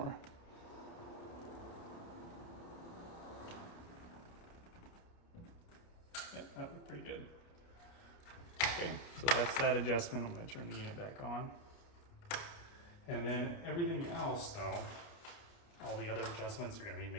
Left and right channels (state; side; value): late; right; 29 ms